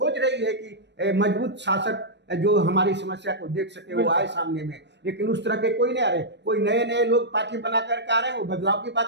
रही है कि मजबूत शासक जो हमारी समस्या को देख सके, वो आए सामने में। लेकिन उस तरह के कोई नहीं आ रहे। कोई नए नए लोग पार्टी बना करके आ रहे हैं, वो बदलाव की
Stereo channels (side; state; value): left; late; 0.51 ms